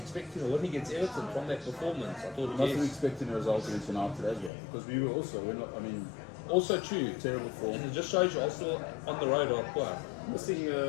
a win against Everton from that performance. I thought, Wasn't yes. expecting a result against United as well, because we were also, Also true. terrible form. And it just shows you Arsenal on the road are poor. Missing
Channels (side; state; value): right; drops out; at 4.5 s